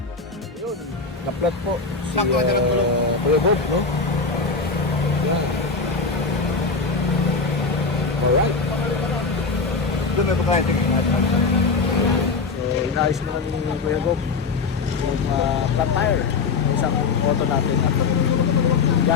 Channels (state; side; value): quieter; right; 4.5 dB